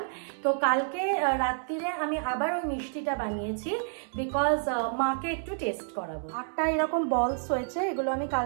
তো কালকে রাত্রিরে আমি আবার ওই মিষ্টিটা বানিয়েছি, বিকজ মাকে একটু টেস্ট করাবো। 8টা এরকম বলস হয়েছে, এগুলো আমি কাল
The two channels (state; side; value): silent; left; 58 dB below the other